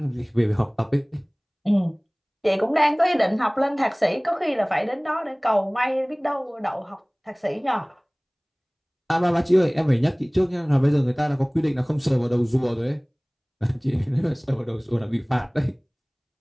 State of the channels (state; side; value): identical; both; correlation 1.00